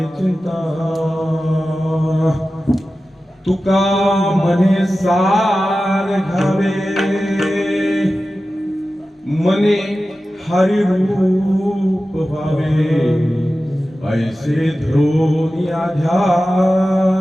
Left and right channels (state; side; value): normal; both; correlation 0.94